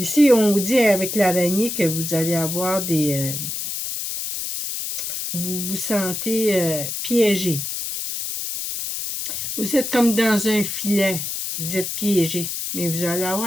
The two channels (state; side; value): noise; left; hiss, 4 dB below the sound